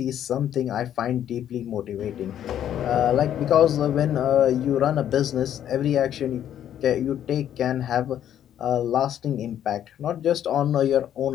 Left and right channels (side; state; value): right; quieter; 10.5 dB